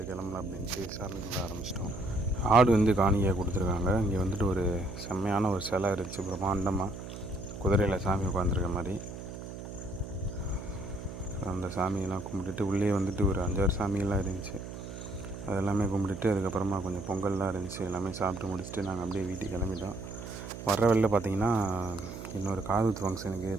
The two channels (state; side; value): noise; right; hum, 10 dB below the sound